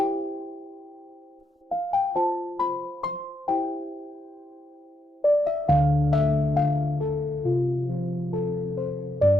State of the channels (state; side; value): normal; both; correlation 0.82